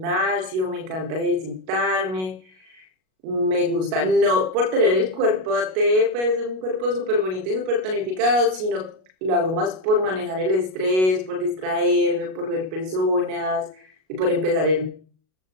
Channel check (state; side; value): late; left; 38 ms